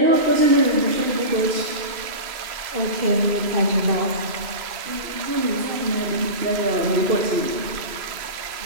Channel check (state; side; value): late; left; 3.0 ms